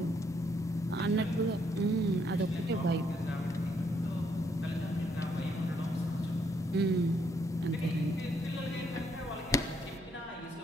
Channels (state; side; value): normal; both; correlation 0.72